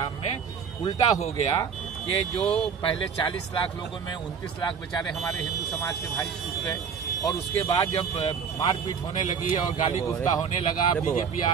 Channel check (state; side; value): quieter; left; 6.6 dB